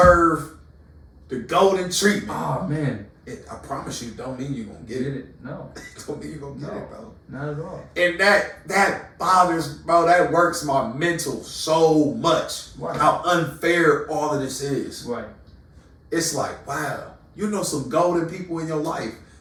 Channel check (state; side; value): identical; both; correlation 1.00